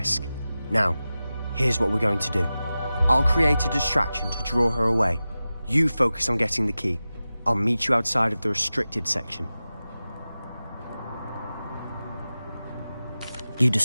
Now, here's what we're going to do. I'll create a distraction to draw her away. You focus on getting the key. I'll meet you outside of the restricted section. You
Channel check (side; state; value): both; inverted; correlation -0.95